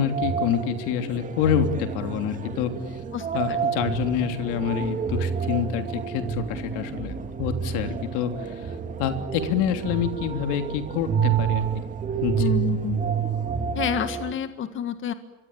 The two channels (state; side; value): normal; both; correlation 0.21